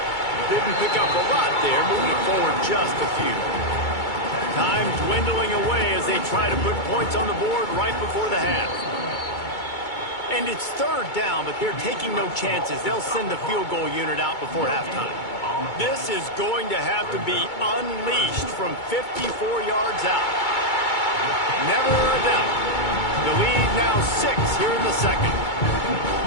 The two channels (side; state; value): right; late; 2.2 ms